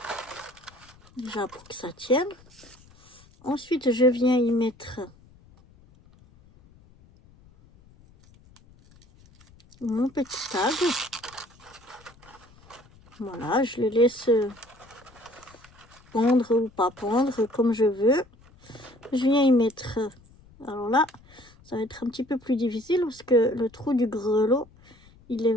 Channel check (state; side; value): noise; left; rumble, 27 dB below the sound